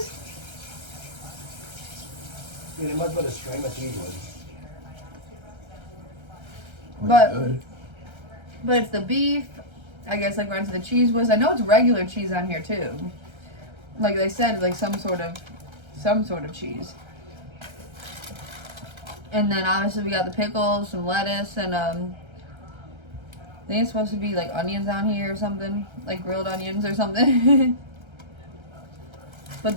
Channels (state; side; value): late; left; 1.3 ms